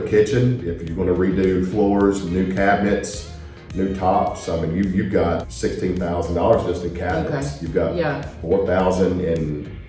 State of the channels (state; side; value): identical; both; correlation 1.00